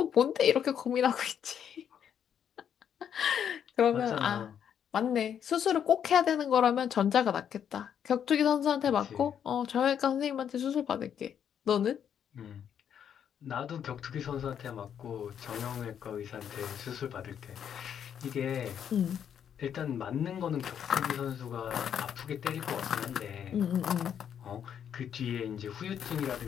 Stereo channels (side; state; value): right; quieter; 8.7 dB